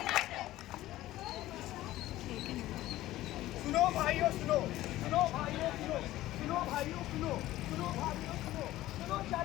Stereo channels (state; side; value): quieter; right; 15.6 dB